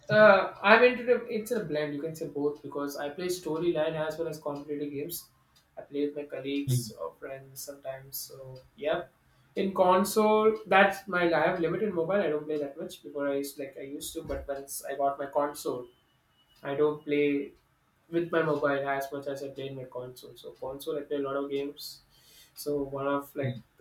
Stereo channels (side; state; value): both; identical; correlation 1.00